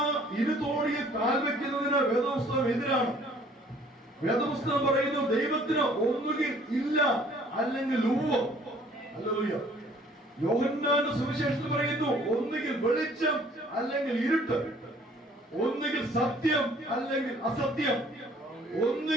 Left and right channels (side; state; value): both; normal; correlation 0.56